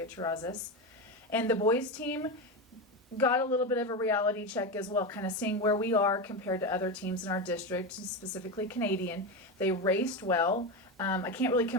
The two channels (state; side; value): normal; both; correlation 0.16